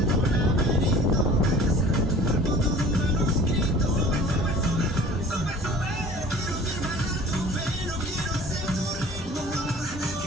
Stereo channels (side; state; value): both; normal; correlation 0.46